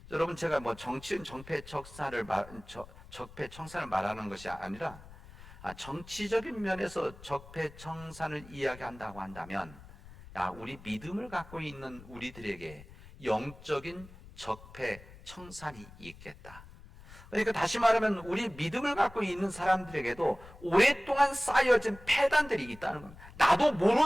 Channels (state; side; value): noise; left; rumble, 19 dB below the sound